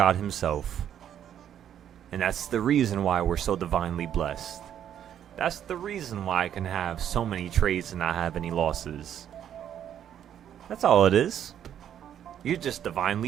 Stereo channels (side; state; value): left; quieter; 9.9 dB